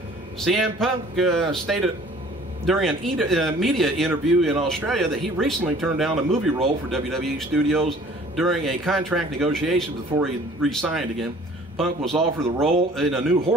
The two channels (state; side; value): normal; both; correlation 0.51